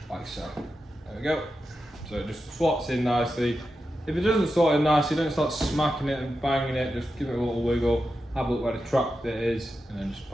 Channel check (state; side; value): normal; both; correlation 0.90